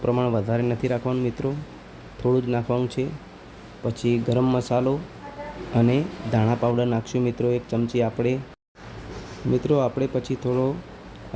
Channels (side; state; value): both; identical; correlation 1.00